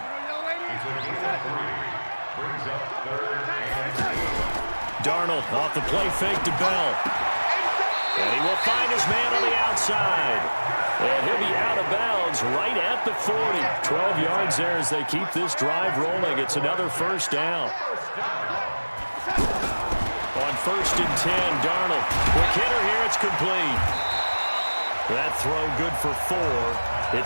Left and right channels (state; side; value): inverted; both; correlation -1.00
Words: Darnold off the play fake to Bell. And he will find his man on the outside. And he'll be out of bounds right at the 40. 12 yards there as they keep this drive rolling. It's another 1st down. On 1st and 10, Darnold. Quick hitter here, it's complete. That throw good for 4.